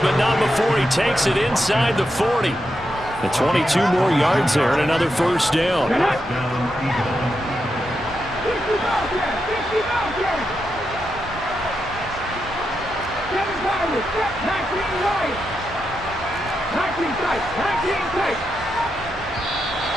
not before he takes it inside the 40. The 22 more yards there and another 1st down. tight. 19 tight.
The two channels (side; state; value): both; normal; correlation 0.85